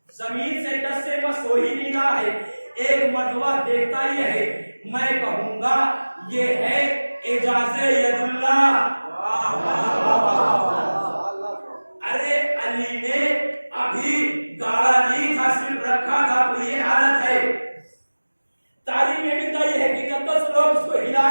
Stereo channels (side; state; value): both; inverted; correlation -1.00